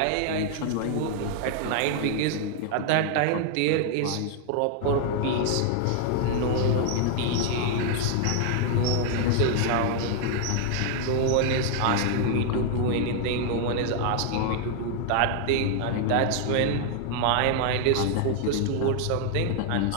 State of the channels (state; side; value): different; both; correlation 0.00